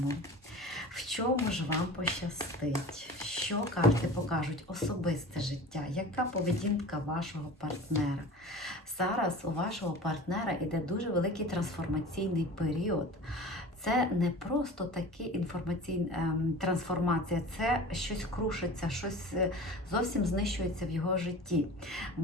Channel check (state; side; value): normal; both; correlation 0.38